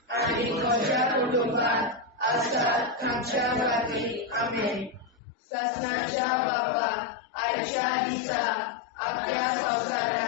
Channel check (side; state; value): right; drops out; at 5.2 s